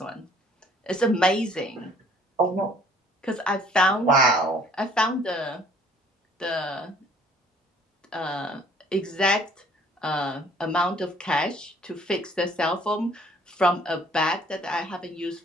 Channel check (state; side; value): normal; both; correlation 0.57